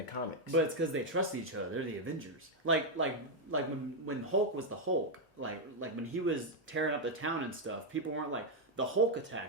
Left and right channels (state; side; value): normal; both; correlation 0.01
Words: comics. But it's because they trusted each other. They're the Avengers. Like when Hulk was the Hulk, like when he was tearing up the town and stuff, people weren't like, the Hulk